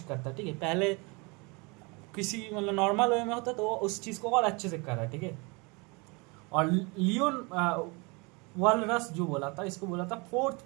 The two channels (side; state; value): left; quieter; 28.9 dB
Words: करता है, ठीक है। पहले किसी मतलब नॉर्मल वे में होता तो वो उस चीज को और अच्छे से कर रहा है, ठीक है। और लियोन वालरस जो बोला था, इसको बोला था